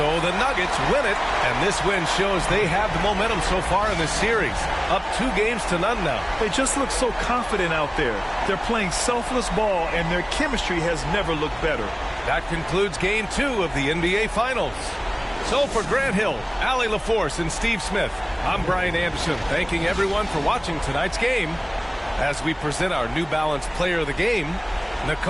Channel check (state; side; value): identical; both; correlation 1.00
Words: the Nuggets win it, and this win shows they have the momentum so far in this series. Up 2-0 now. They just look so confident out there. They're playing selfless ball, and their chemistry has never looked better. That concludes Game 2 of the NBA Finals. So for Grant Hill, Allie LaForce, and Steve Smith, I'm Brian Anderson, thanking everyone for watching tonight's game as we present our New Balance Player of the Game,